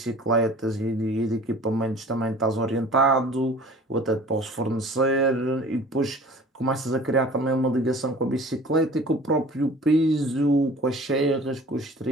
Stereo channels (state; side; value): normal; both; correlation 0.46